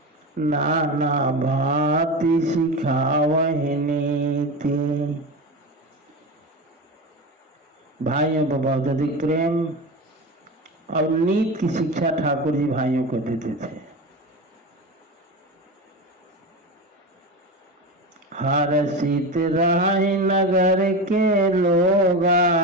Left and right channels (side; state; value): both; normal; correlation 0.24